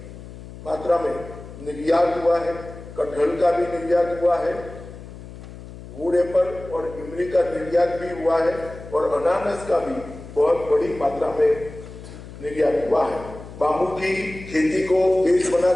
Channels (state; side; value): noise; left; hum, 15 dB below the sound